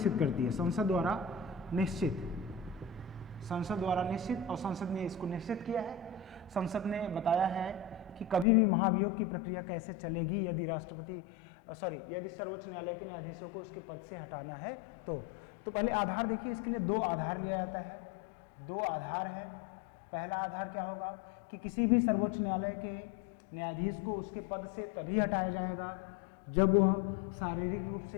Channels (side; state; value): right; drops out; at 8.5 s